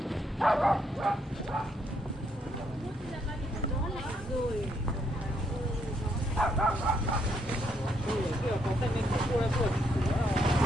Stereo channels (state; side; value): normal; both; correlation 0.74